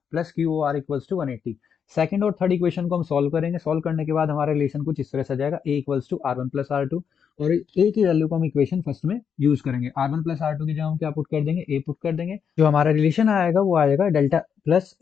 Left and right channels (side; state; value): right; quieter; 7.3 dB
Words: plus Q R equals to 180। Second और थर्ड इक्वेशन को हम सॉल्व करेंगे। सॉल्व करने के बाद हमारा रिलेशन कुछ इस तरह से आ जाएगा, A equals to R one plus R two, और ए की वैल्यू को हम इक्वेशन फर्स्ट में यूज करेंगे। R one plus R two की जगह हम क्या पुट कर देंगे, ए पुट कर देंगे। जो हमारा रिलेशन आएगा वो आएगा delta plus